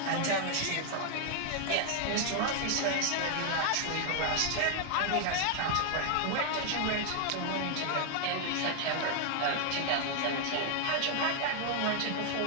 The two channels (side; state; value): both; different; correlation 0.00